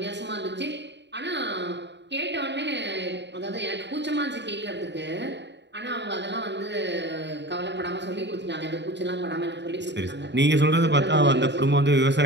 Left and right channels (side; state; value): left; late; 0.51 ms